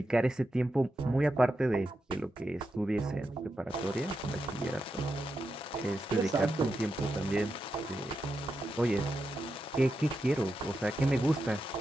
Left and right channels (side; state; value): both; normal; correlation 0.87